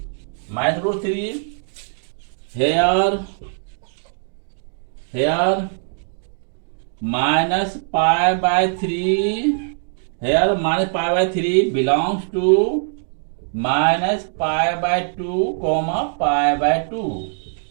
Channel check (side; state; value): left; silent; digital silence